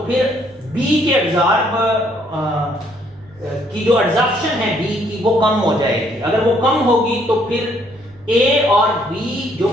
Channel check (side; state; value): right; noise; rumble, 28 dB below the sound